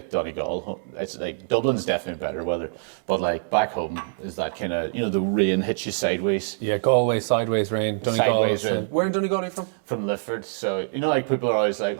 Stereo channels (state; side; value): silent; left; digital silence